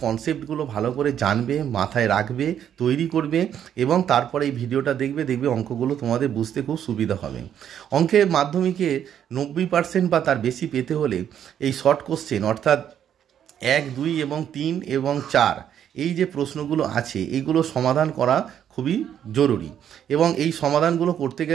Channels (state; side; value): quieter; left; 9.5 dB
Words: কনসেপ্টগুলো ভালো করে জানবে, মাথায় রাখবে, তৈরি করবে এবং তারপরে এই ভিডিওটা দেখবে অঙ্কগুলো তোমাদের বুঝতে খুব সুবিধা হবে। অঙ্কে মাধ্যমিকে 90% বা তার বেশি পেতে হলে এই শর্ট কোশ্চেন অর্থাৎ 1, 2 এবং 3 এবং 4 এই যে প্রশ্নগুলো আছে এইগুলো সমাধান করা খুবই জরুরি এবং এই সমাধানগুলো করতে